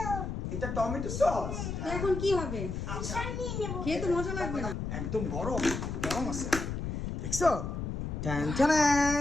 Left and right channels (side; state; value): left; noise; rumble, 4 dB below the sound